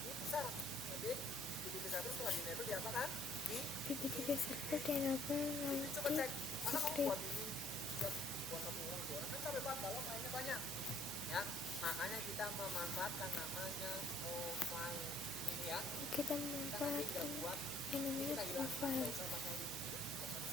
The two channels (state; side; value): noise; left; hum, 18 dB below the sound